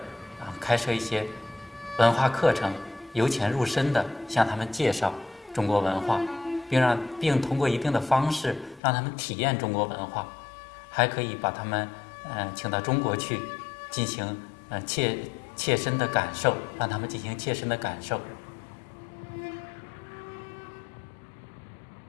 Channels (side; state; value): right; drops out; at 8.8 s